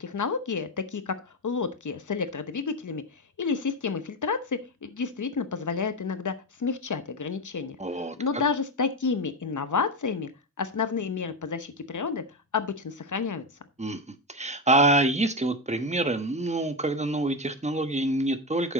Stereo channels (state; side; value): normal; both; correlation 0.12